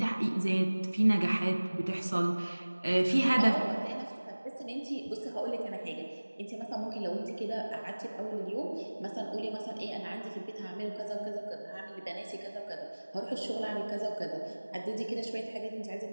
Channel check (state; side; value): inverted; both; correlation -1.00